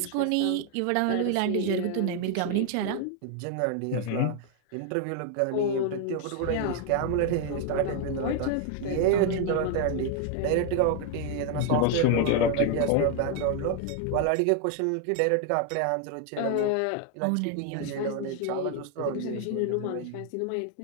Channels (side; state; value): both; different; correlation 0.01